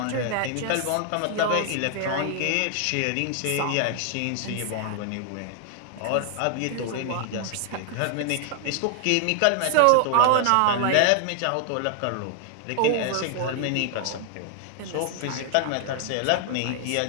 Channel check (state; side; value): different; both; correlation 0.00